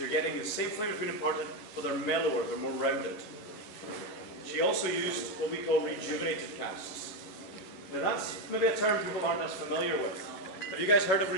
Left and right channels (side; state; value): right; late; 10 ms